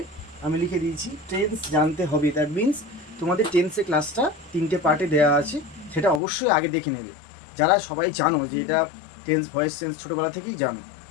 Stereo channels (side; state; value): right; drops out; at 6.2 s